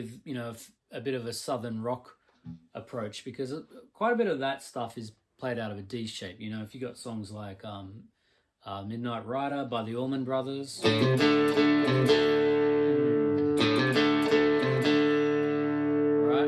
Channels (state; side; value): identical; both; correlation 1.00